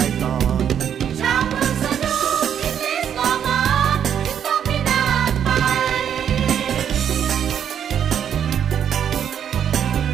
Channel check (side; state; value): left; quieter; 8.9 dB